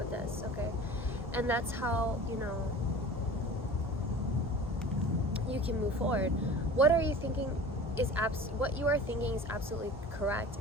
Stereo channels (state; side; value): normal; both; correlation 0.39